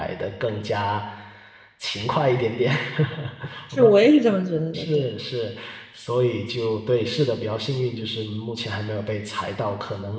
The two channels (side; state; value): both; identical; correlation 1.00